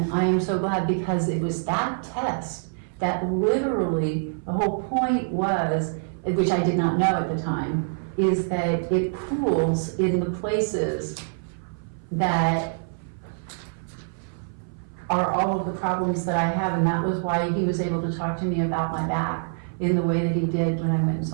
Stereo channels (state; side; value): silent; left; 57 dB below the other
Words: I am so glad, because it was that test that literally, the whole point was, which I did not know at the time, is that it pools in the places that are all of the problems that I have, and that was why he was able to talk to me about my back in the way that he did when I went and